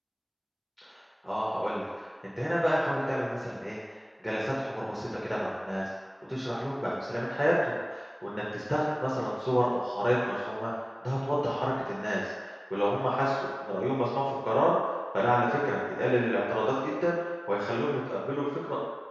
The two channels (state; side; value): identical; both; correlation 1.00